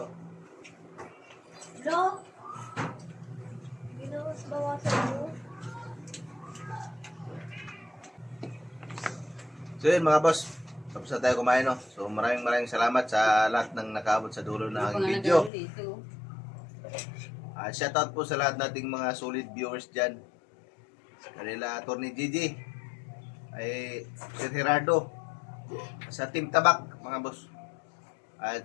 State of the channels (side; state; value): right; drops out; at 15.5 s